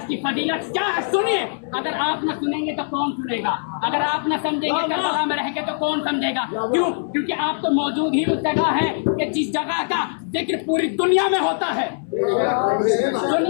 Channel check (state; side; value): silent; right; 64 dB below the other